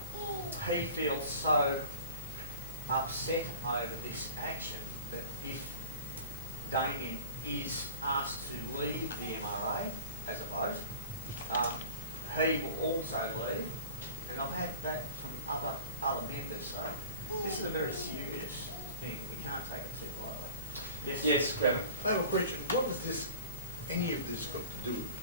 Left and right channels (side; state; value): both; inverted; correlation -0.40